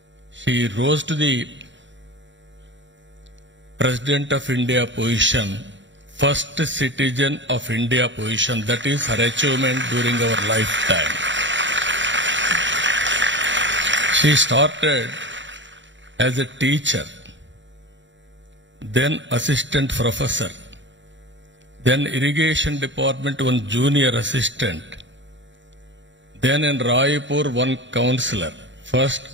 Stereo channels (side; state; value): left; late; 0.54 ms